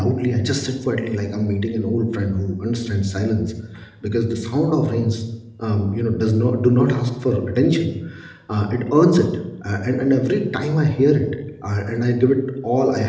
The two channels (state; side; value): identical; both; correlation 1.00